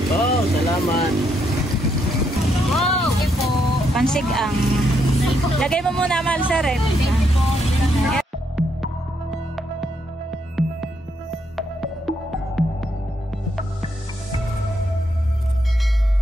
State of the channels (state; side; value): normal; both; correlation 0.76